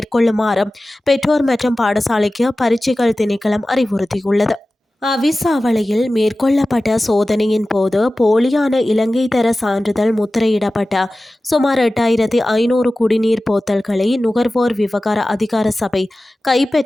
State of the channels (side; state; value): both; normal; correlation 0.96